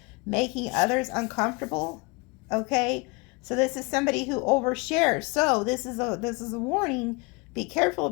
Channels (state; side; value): quieter; right; 28.7 dB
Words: making others uncomfortable. Okay, so this is somebody who overshares. So this is a warning. Be careful